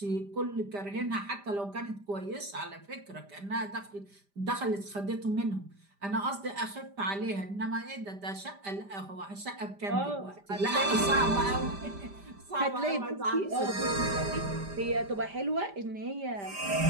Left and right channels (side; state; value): left; late; 5.0 ms